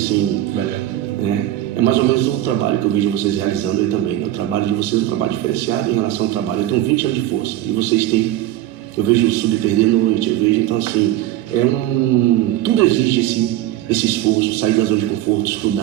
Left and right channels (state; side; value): quieter; left; 13.7 dB